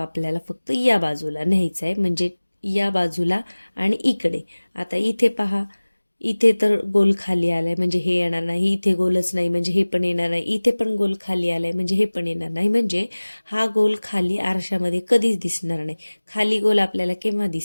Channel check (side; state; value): both; inverted; correlation -1.00